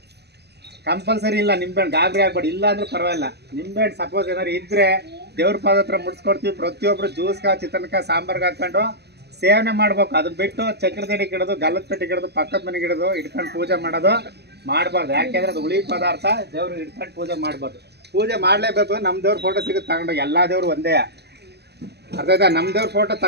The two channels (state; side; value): late; left; 0.48 ms